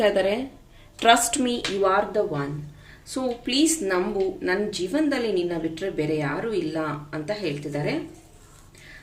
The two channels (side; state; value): both; identical; correlation 1.00